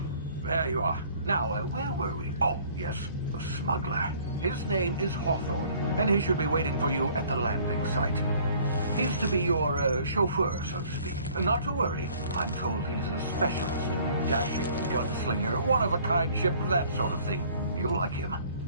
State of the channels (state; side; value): inverted; both; correlation -0.55